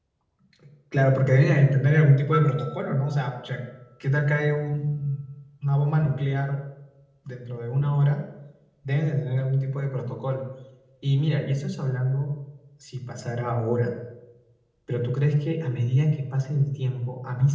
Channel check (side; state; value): both; identical; correlation 1.00